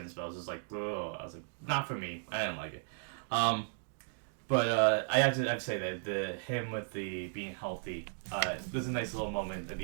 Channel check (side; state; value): left; silent; digital silence